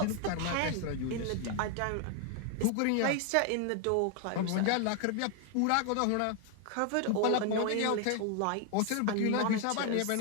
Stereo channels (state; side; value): different; both; correlation 0.00